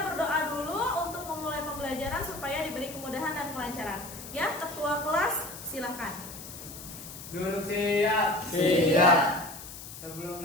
berdoa dulu untuk memulai pembelajaran supaya diberi kemudahan dan kelancaran. Ya, ketua kelas silakan. Duduk siap. Siap. Sebelum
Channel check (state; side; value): noise; left; hiss, 13 dB below the sound